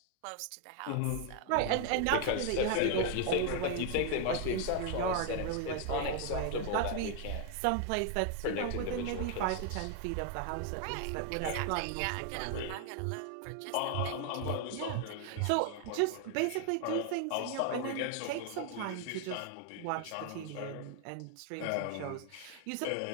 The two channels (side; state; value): both; different; correlation 0.00